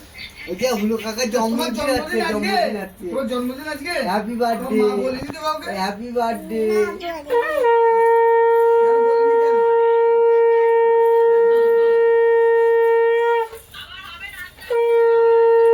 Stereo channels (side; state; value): both; identical; correlation 1.00